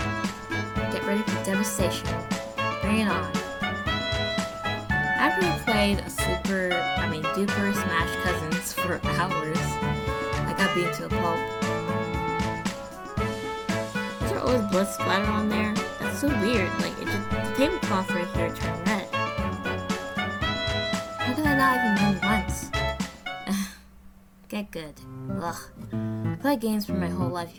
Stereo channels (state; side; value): identical; both; correlation 1.00